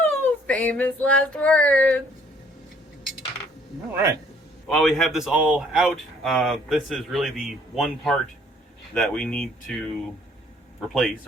Famous last words. All right. While we have this all out, this is really the one part that we need to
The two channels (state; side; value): normal; both; correlation 0.61